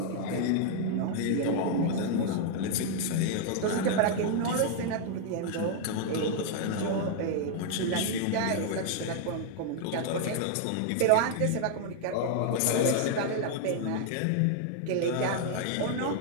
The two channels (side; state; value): both; different; correlation 0.00